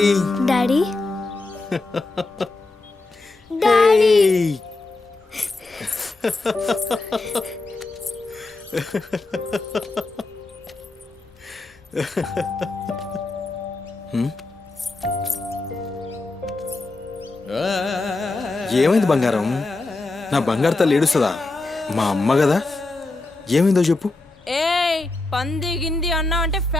డాడీ డాడీ ఏమైంది బంగారం నా బంగారు తల్లి ఏడుస్తుందా మా అమ్మ కదా ఏమైందో చెప్పు ఏయ్ పంది గింది అన్నా అంటే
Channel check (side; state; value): right; quieter; 3.2 dB